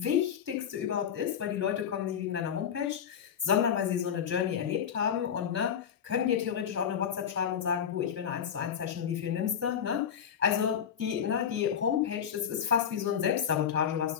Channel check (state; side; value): quieter; right; 8.3 dB